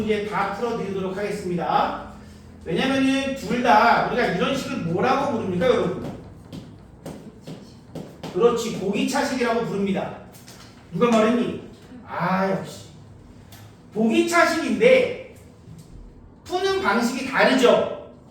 다 풀어드리도록 하겠습니다. 왜냐면은 둘 다 우리가 이런 식을 뭐라고 부릅니까 여러분? 그렇지, 보기차식이라고 부릅니다. 누가 말했니? 아 역시 보기차식인데 푸는 방식이 다르죠.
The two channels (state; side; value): identical; both; correlation 1.00